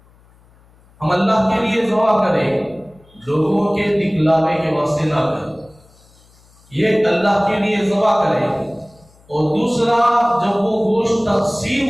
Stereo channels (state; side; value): noise; left; hum, 30 dB below the sound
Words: ہم اللہ کے لیے ذبح کریں، لوگوں کے دکھلاوے کے واسطے نہ کریں، یہ اللہ کے لیے ذبح کریں۔ اور دوسرا، جب وہ گوشت تقسیم